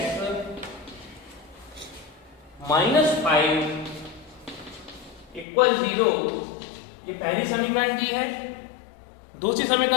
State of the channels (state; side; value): drops out; right; at 5.5 s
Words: minus 5 equal 0। ये पहली समीकरण दी है। दूसरी